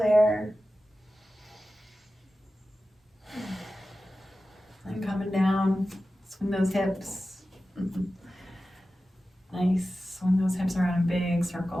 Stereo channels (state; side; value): normal; both; correlation 0.94